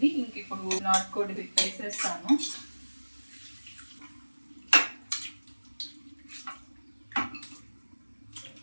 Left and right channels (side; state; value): both; inverted; correlation -1.00